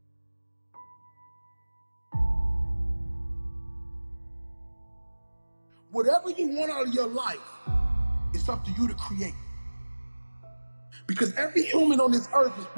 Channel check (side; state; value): both; inverted; correlation -1.00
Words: Whatever you want out of your life, it's up to you to create. Because every human on this earth is